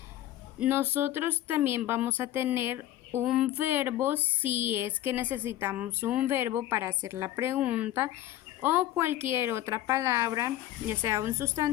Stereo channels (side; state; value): right; quieter; 13.6 dB